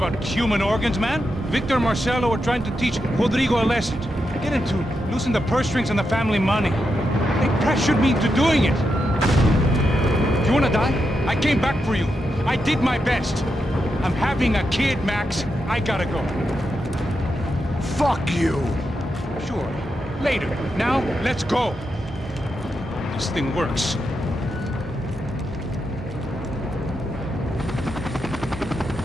human organs, man. Victor and Marcelo are trying to teach Rodrigo a lesson. Get into losing the purse strings and the family money. They pressured me into doing it. You wanna die? I came back for you. I did my best. I'm having a kid, Max. I gotta go. Fuck you! Sure. Later. Now, let's go. This thing works.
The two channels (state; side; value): normal; both; correlation 0.85